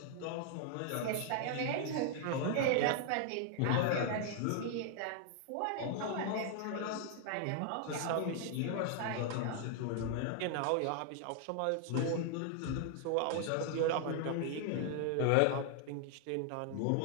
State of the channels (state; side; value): different; both; correlation 0.00